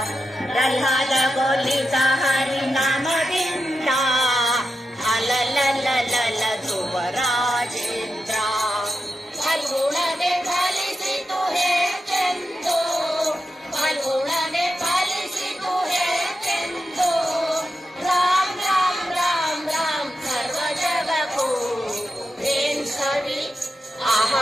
ಪ್ರಹ್ಲಾದಗೊಳಿದ ಹರಿನಾಮದಿಂದ ಅಲಲಲಲಲ ಧ್ರುವ ರಾಜೇಂದ್ರ. ಫಲ್ಗುಣನೆ ಫಲಿಸಿತು ಹೆಚ್ಚೆಂದು, ಫಲ್ಗುಣನೆ ಫಲಿಸಿತು ಹೆಚ್ಚೆಂದು, ರಾಮ್ ರಾಮ್ ರಾಮ್ ರಾಮ್ ಸರ್ವ ಜಗಕ್ಕೂ. ಏನ್ ಸವಿ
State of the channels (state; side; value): normal; both; correlation 0.89